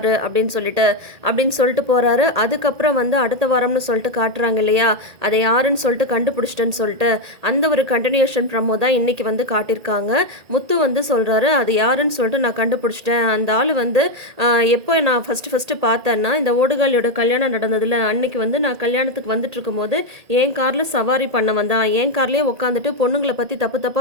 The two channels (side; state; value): left; late; 1.8 ms